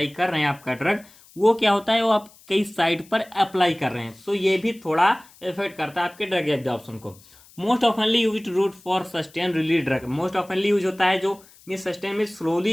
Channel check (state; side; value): noise; left; hiss, 26 dB below the sound